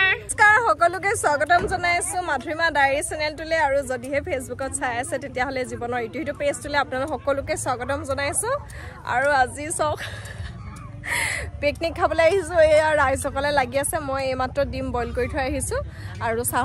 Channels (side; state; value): both; identical; correlation 1.00